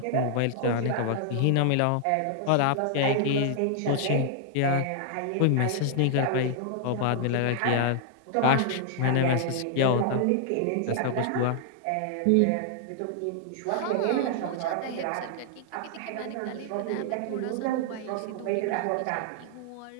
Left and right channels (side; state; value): both; different; correlation -0.01